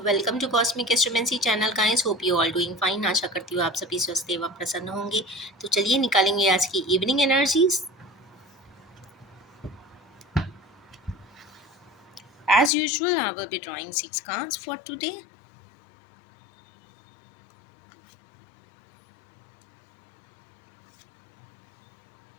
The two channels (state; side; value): drops out; right; at 12.7 s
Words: to cosmic astromancy channel guys. Hope you all doing fine. आशा करती हूँ आप सभी स्वस्थ एवं प्रसन्न होंगे। तो चलिए निकालेंगे आज की evening energies. As usual I will be drawing 6 cards for today.